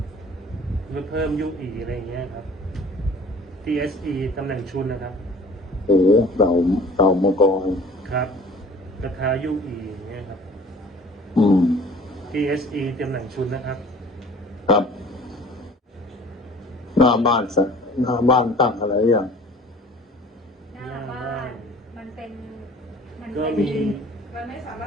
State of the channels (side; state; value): both; normal; correlation 0.47